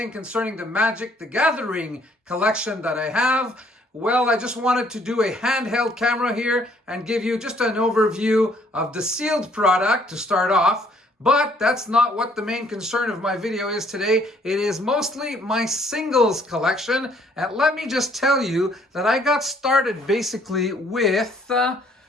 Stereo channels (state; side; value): normal; both; correlation 0.63